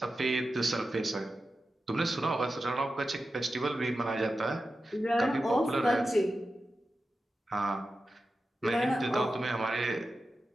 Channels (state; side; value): normal; both; correlation 0.92